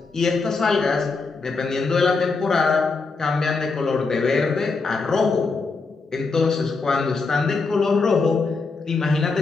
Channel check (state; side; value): quieter; right; 4.2 dB